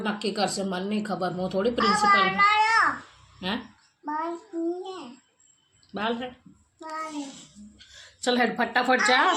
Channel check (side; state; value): both; identical; correlation 1.00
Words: નક્કી કરશે, મને નહીં ખબર. હું થોડી પ્રિન્સિપલ. હે બાલ હે? ચલ હેડ ફટાફટ જા,